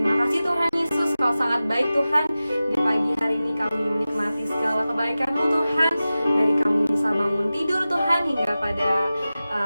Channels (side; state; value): both; inverted; correlation -0.96